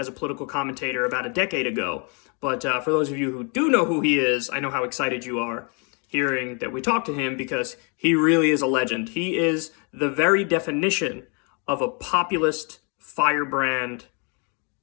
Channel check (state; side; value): quieter; right; 35.4 dB